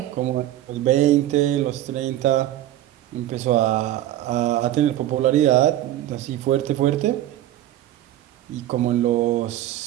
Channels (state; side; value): quieter; left; 13.5 dB